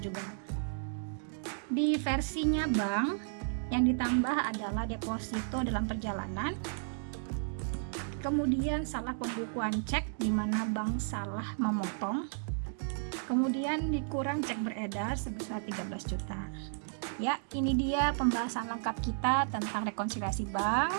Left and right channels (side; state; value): left; silent; digital silence